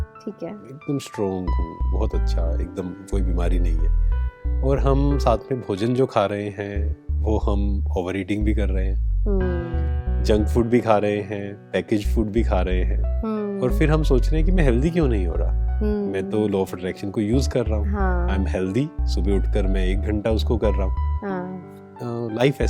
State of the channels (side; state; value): both; identical; correlation 1.00